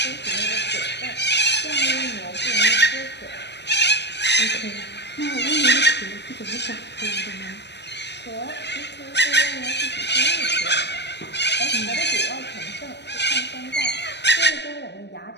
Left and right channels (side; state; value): right; late; 0.50 ms